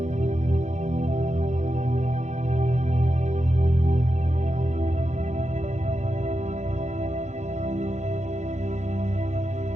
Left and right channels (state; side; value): late; left; 0.34 ms